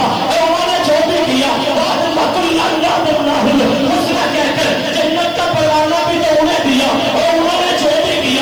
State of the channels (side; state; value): left; noise; hiss, 27 dB below the sound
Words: اے انہوں نے جو بھی کیا وَكُلًّا وَعَدَ اللَّهُ الْحُسْنَىٰ کہہ کر جنت کا پروانہ بھی تو انہیں دیا، اے انہوں نے جو بھی